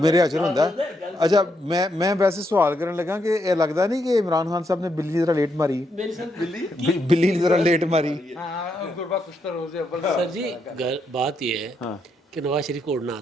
ہاتھ ہوندا ہے. اچھا میں ویسے سوال کرنے لگا کہ یہ لگتا نہیں کہ عمران خان صاحب نے بلی ذرا لیٹ ماری, بلی ذرا لیٹ ماری. سر جی بات یہ ہے کہ نواز شریف کو اڑنا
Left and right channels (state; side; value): normal; both; correlation 0.79